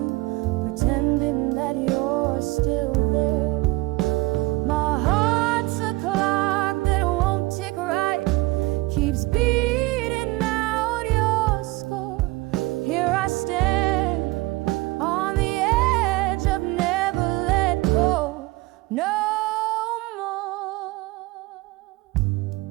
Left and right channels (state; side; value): quieter; left; 21.3 dB